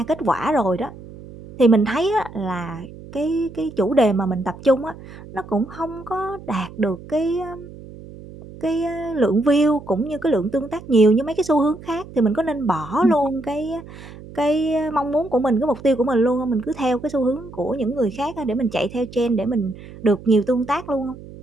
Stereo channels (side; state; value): right; noise; hum, 16 dB below the sound